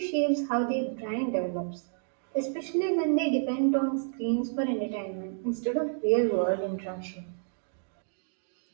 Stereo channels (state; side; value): silent; left; digital silence